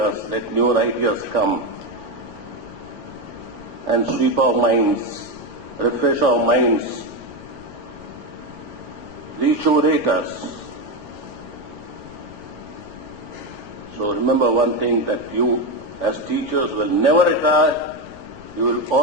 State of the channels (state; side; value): noise; left; rumble, 21 dB below the sound